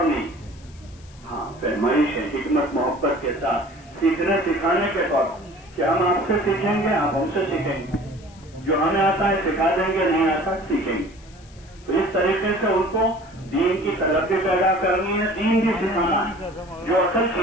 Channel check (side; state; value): left; noise; hiss, 26 dB below the sound